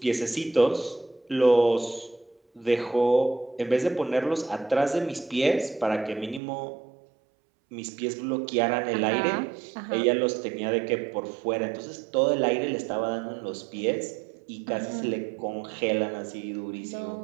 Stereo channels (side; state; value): left; drops out; at 6.4 s